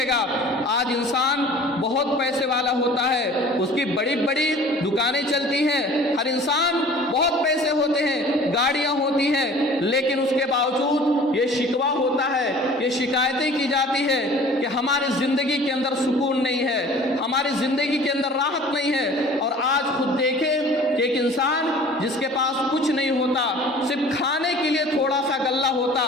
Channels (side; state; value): both; normal; correlation 0.47